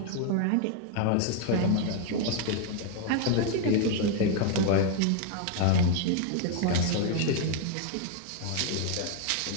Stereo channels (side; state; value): both; different; correlation 0.01